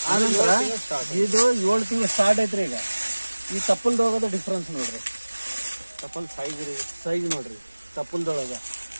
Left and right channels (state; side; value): inverted; both; correlation -1.00